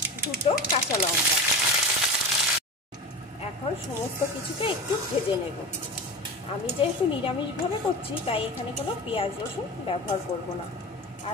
দুটো কাঁচা লঙ্কা। এখন সমস্ত কিছুকে একটু ভেজে নেব। আমি যেহেতু নিরামিষভাবে করছি তাই এখানে কোনো পেঁয়াজ রসুন ব্যবহার করব না।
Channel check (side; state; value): both; normal; correlation 0.27